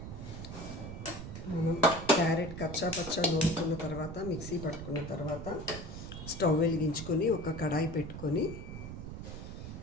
క్యారెట్ కచ్చా పచ్చా నూరుకున్న తర్వాత, మిక్సీ పట్టుకున్న తర్వాత స్టవ్ వెలిగించుకొని ఒక కడాయి పెట్టుకొని,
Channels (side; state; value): right; noise; rumble, 9 dB below the sound